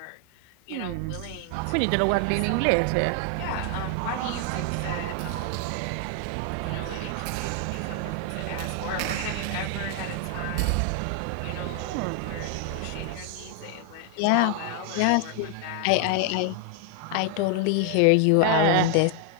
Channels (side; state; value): both; different; correlation 0.00